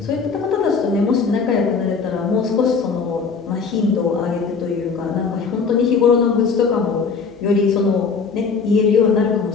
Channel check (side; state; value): right; quieter; 5.2 dB